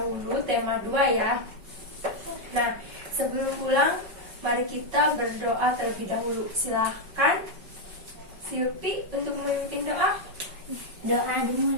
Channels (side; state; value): left; late; 5.3 ms